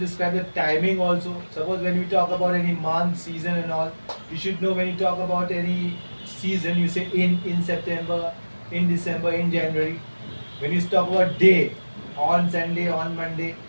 the timing also. Suppose when we talk about any month, season and all, you should know when you talk about any season, you say in September, in December, in January. When you talk about day, on Sunday, on Monday.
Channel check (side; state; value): both; inverted; correlation -1.00